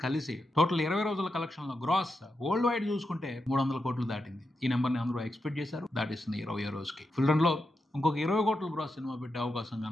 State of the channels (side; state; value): both; normal; correlation 0.87